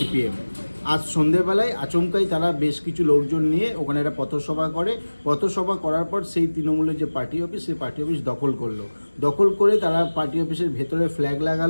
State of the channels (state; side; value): inverted; both; correlation -1.00